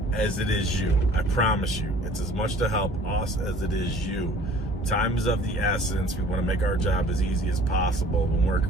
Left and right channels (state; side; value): normal; both; correlation 0.50